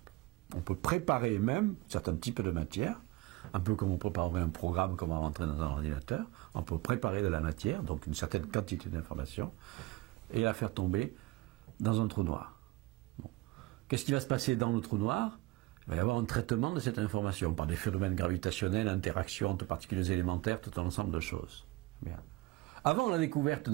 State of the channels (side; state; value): left; quieter; 20.7 dB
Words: On peut préparer même certains types de matière, un peu comme on préparerait un programme qu'on va rentrer dans un ordinateur. On peut préparer de la matière, donc une certaine quantité d'informations, et la faire tomber dans un trou noir. Bon. Qu'est-ce qui va se passer dans le trou noir? Il va y avoir un traitement de cette information par des phénomènes gravitationnels, interactions entre particules élémentaires, tout un ensemble de choses. Bien. Avant la découverte